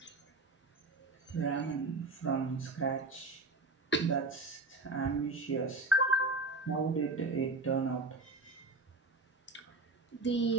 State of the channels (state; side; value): quieter; left; 3.1 dB